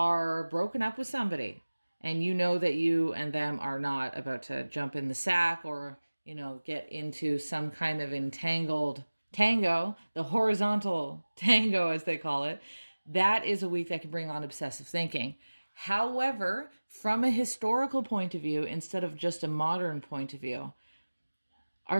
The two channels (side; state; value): both; inverted; correlation -1.00